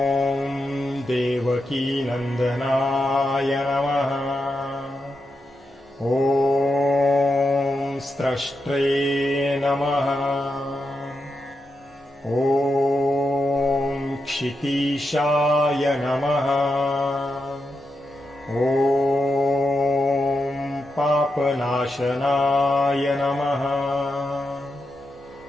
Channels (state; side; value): normal; both; correlation 0.86